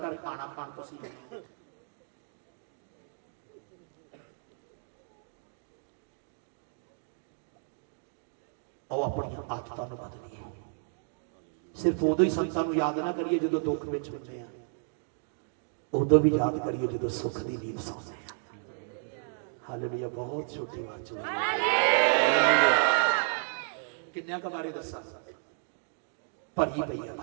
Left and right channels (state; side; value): silent; left; digital silence